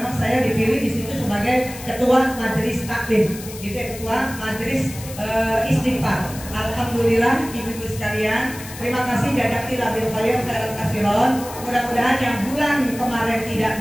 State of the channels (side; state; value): left; noise; hiss, 14 dB below the sound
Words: saya dipilih di situ sebagai ketua majelis taklim, gitu ya, ketua majelis istighfar. Alhamdulillah ibu-ibu sekalian, terima kasih jadaki labil kalian khairan kasiron. Mudah-mudahan yang bulan kemarin tidak